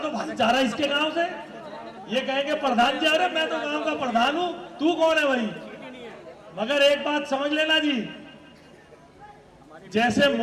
भाईचारा इसके गांव से। ये कहेंगे प्रधान जी, अरे मैं तो गांव का प्रधान हूं, तू कौन है भाई? मगर एक बात समझ लेना जी, जैसे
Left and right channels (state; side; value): identical; both; correlation 1.00